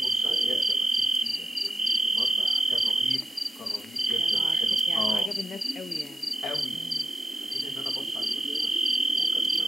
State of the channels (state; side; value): normal; both; correlation 0.88